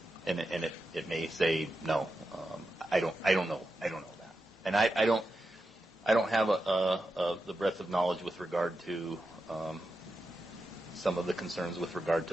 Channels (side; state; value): both; normal; correlation 0.89